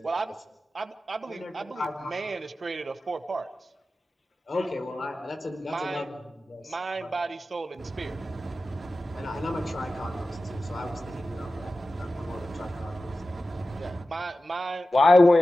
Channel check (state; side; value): normal; both; correlation 0.94